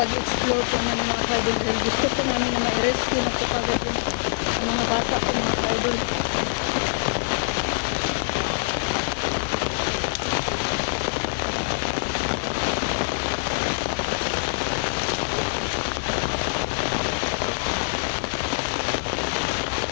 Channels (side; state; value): right; silent; digital silence